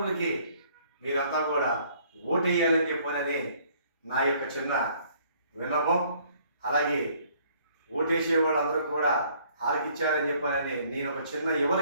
మీరంతా కూడా ఓటు వేయాలని చెప్పనని నా యొక్క చిన్న విన్నపం. అలాగే ఓటేసే వాళ్ళందరూ కూడా ఆలకించాలని చెప్పాలని నేను ఒక చిన్న యువల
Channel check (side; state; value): both; inverted; correlation -0.61